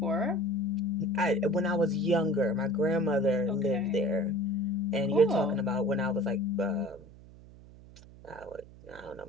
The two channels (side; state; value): right; noise; hum, 20 dB below the sound